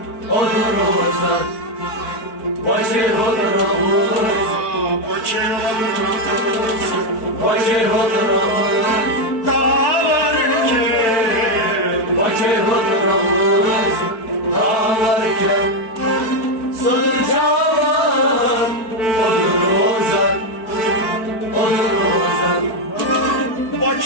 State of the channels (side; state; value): right; late; 4.5 ms